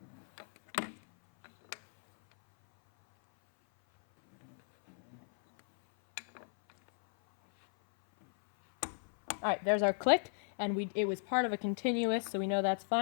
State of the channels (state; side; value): silent; right; 55 dB below the other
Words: Alright, there's our click, and it was part of a continuous, so we know that's